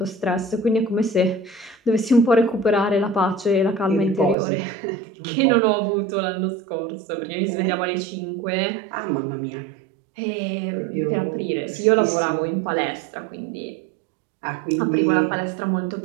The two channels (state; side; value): drops out; left; at 4.4 s